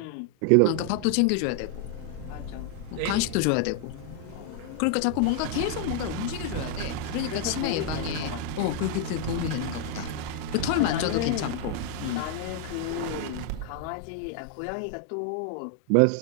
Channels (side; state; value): both; different; correlation 0.00